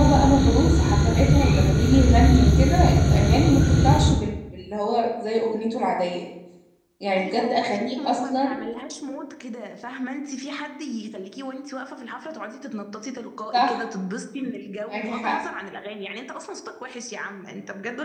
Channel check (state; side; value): identical; both; correlation 1.00